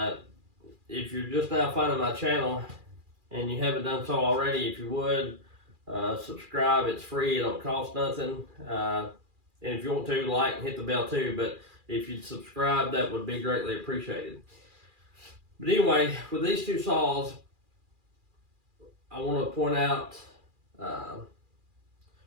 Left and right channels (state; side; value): late; left; 2.4 ms